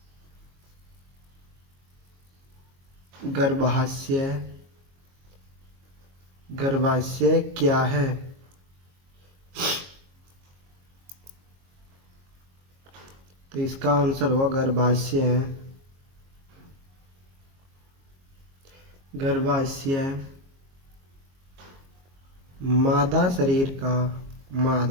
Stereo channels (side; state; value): left; late; 22 ms